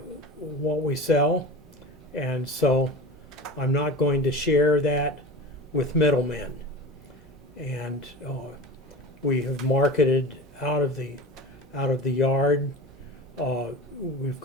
sell, and so I'm not going to share that with middlemen. And we have marketed out of the yard. We've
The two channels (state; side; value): normal; both; correlation 0.33